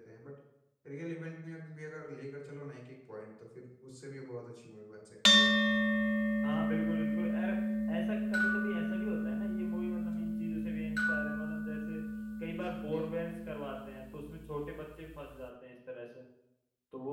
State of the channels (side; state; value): both; identical; correlation 1.00